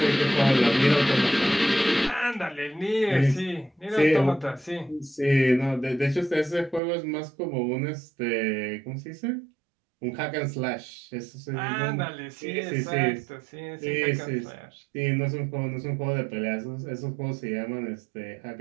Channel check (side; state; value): left; drops out; at 6.8 s